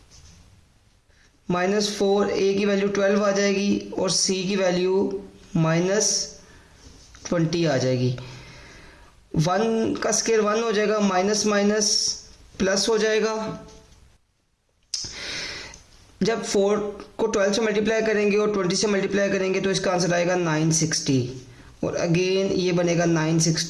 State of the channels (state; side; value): identical; both; correlation 1.00